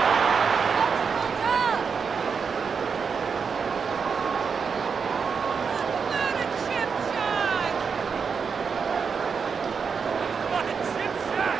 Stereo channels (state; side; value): quieter; left; 5.9 dB